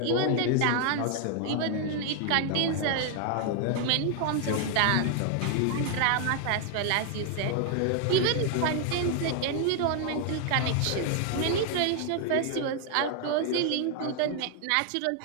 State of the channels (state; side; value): different; both; correlation 0.00